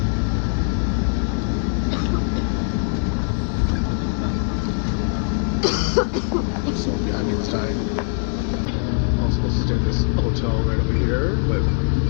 So behind me was dying. I was supposed to stay at this hotel right over here, but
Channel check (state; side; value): quieter; right; 39.8 dB